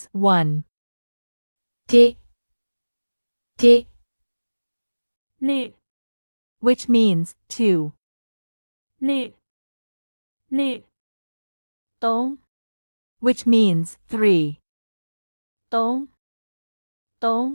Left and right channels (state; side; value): inverted; both; correlation -1.00